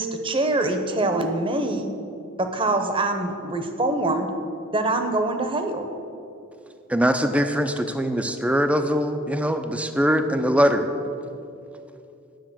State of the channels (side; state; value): both; normal; correlation 0.56